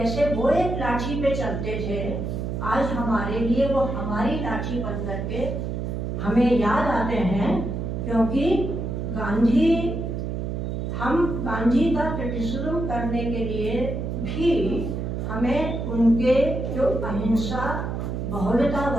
वो एक लाठी पे चलते थे, आज हमारे लिए वो हमारी लाठी बन करके हमें याद आते हैं, क्योंकि हम गांधी का क्रिटिसिज्म करने के लिए भी हमें उनके जो अहिंसा,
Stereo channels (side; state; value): right; noise; hum, 3 dB below the sound